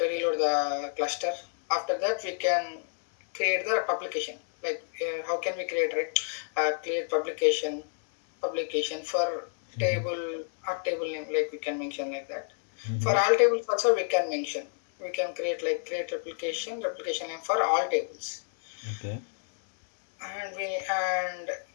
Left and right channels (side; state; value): right; silent; 58 dB below the other